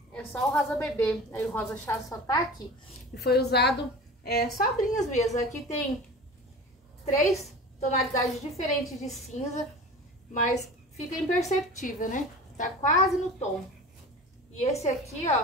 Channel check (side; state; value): both; normal; correlation 0.36